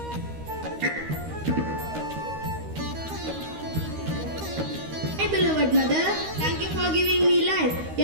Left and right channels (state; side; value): late; left; 13 ms